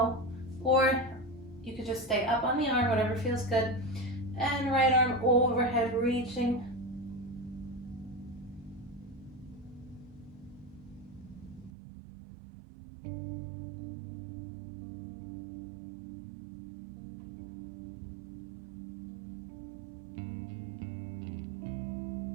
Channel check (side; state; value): left; drops out; at 11.7 s